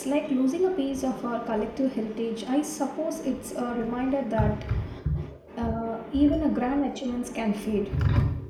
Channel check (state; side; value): identical; both; correlation 1.00